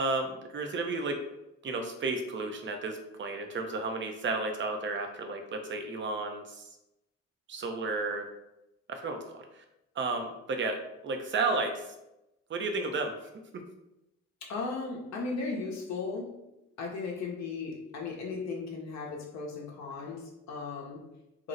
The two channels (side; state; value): both; normal; correlation 0.15